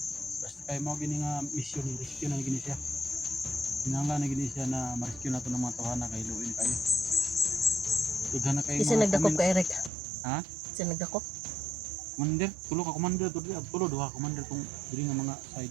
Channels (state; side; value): drops out; left; at 9.9 s